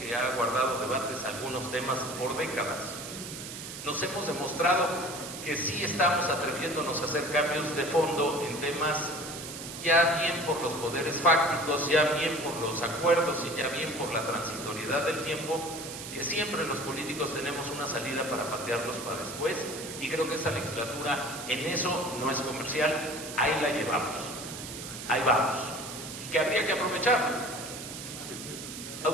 que ha guardado debates algunos temas por décadas. Nos hemos demostrado que sí estamos atreviéndonos a hacer cambios de fondo en temas ya bien por los poderes fácticos, ya bien por los acuerdos y ya bien por la transitoriedad del tiempo, que siempre los políticos tenemos una salida para patearlos para después, y creo que esa legislatura en eso no es comercial, ahí la llevamos, ahí vamos, y que habría que aprovechar.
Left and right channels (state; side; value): noise; right; hiss, 9 dB below the sound